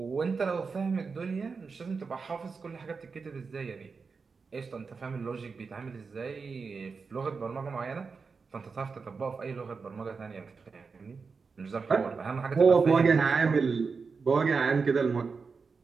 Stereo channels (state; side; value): quieter; left; 4.9 dB